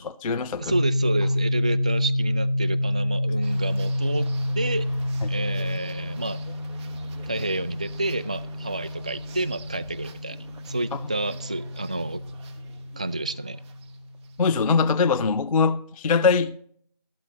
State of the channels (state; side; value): inverted; both; correlation -0.70